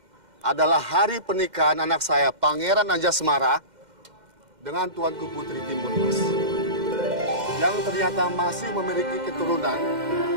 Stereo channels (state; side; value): late; left; 2.1 ms